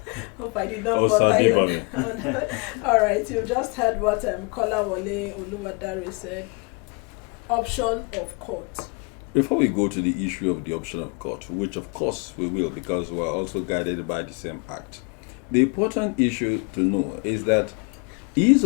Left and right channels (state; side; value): quieter; right; 32.1 dB